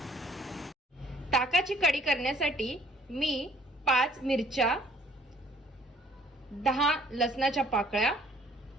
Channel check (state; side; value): normal; both; correlation 0.59